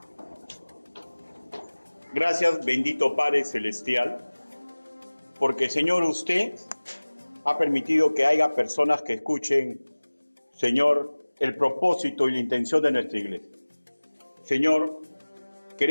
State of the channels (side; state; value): both; inverted; correlation -1.00